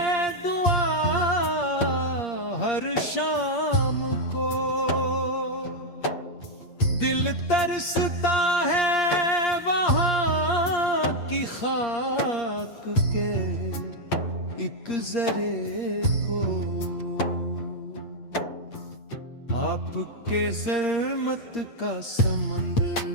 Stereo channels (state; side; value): late; right; 8.6 ms